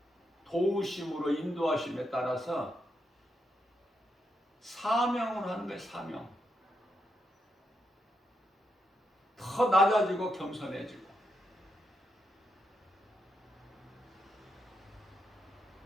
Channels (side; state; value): both; normal; correlation 0.82